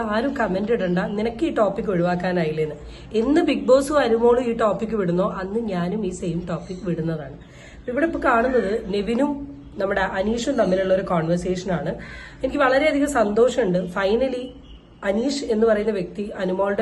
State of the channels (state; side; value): identical; both; correlation 1.00